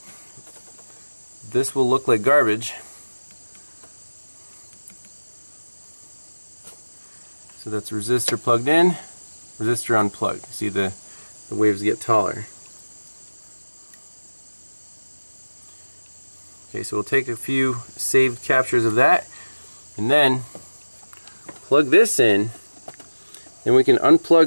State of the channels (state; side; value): inverted; both; correlation -1.00